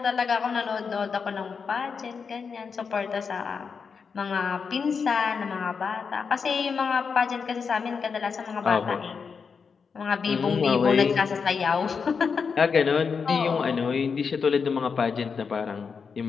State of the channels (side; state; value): right; quieter; 5.7 dB